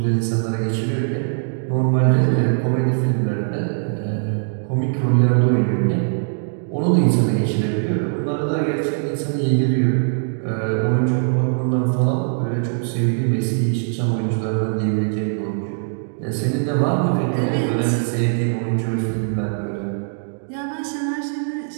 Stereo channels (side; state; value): left; silent; digital silence